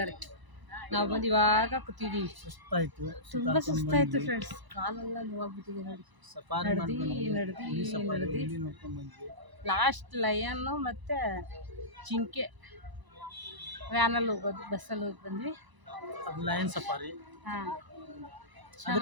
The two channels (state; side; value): late; left; 1.0 ms